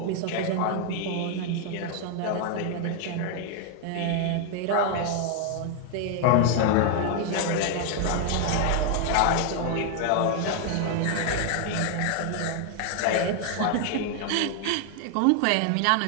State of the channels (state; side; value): different; both; correlation 0.00